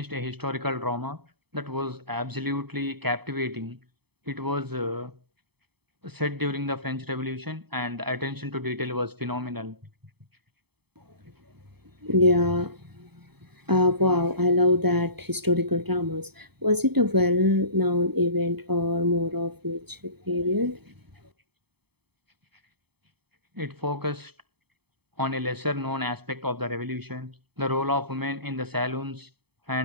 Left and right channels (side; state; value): left; late; 0.97 ms